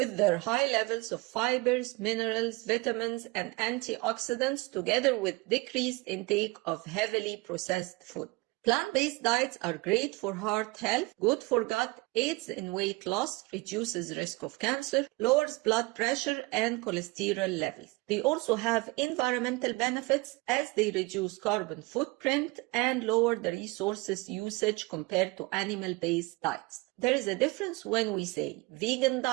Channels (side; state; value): left; quieter; 24.1 dB